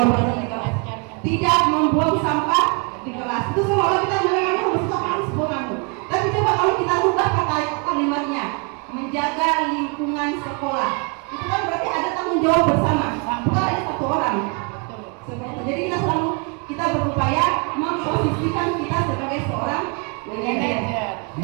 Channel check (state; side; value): quieter; left; 35.1 dB